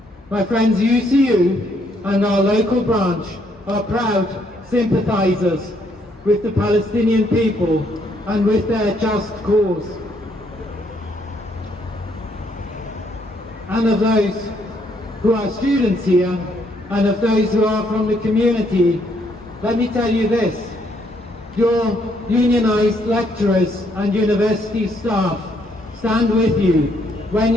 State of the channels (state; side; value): normal; both; correlation 0.71